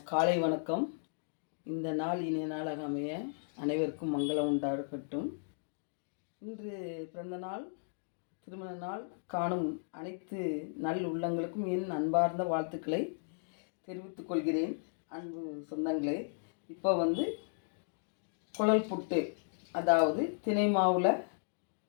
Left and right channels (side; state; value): right; silent; digital silence